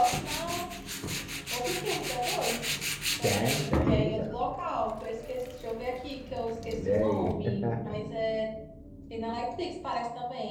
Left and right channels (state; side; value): identical; both; correlation 1.00